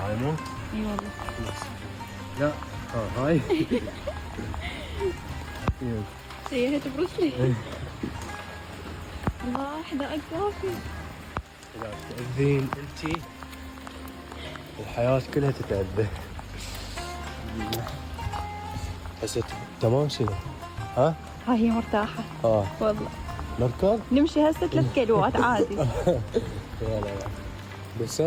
مو؟ اي والله. لا هاي سيهت بروسلي. الله حدائق كافي. لا تأذين انتي الحياة كلها تتأذى. هسه تمام شنو؟ ها؟ هاي هي مرتاحة والله. نركض؟ نمشي هسه 3 كيلوات عادي. لا بس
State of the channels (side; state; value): both; identical; correlation 1.00